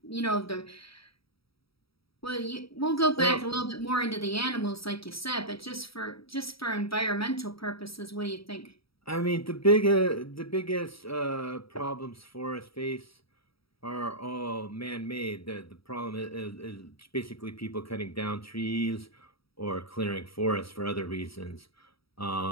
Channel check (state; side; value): late; right; 0.76 ms